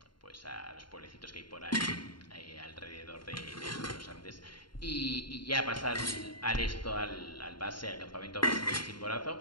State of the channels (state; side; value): late; right; 0.72 ms